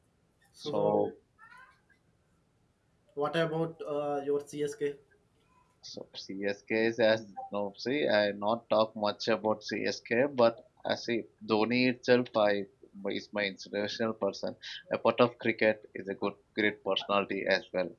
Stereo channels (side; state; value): both; identical; correlation 1.00